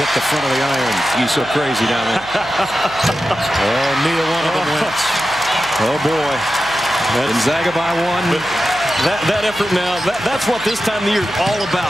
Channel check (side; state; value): right; noise; hum, 19 dB below the sound